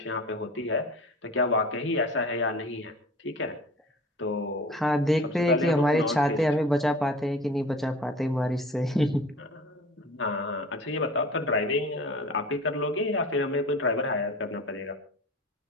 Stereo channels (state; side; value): normal; both; correlation 0.41